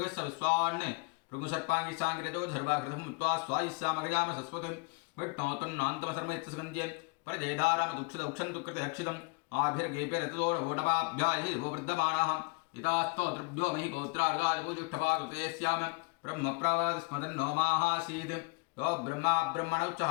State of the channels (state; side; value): quieter; right; 28.5 dB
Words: विश्वान् भृगुसर्पाङ्गिसाङ्गिरजो धर्वाकृतं मुत्वा स्वायिस्सामगजाम सस्वतिं विष्णोतन्नान्तमसर्मयत्सगन्ध्ये परजेधारामदुक्षदुक्षन्तुकृतयक्षितम् आभिर्गेपिरतोडवोटमाभ्याहि वर्धमानः यथास्तोत्रभ्यो महि गोत्रार्गादिपूजुष्ठपाकृते स्याम ब्रह्मप्रावास्मदन्नो माहासीत् यो ब्रह्मा